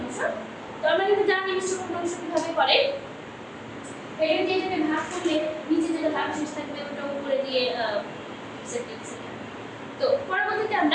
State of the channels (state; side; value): identical; both; correlation 1.00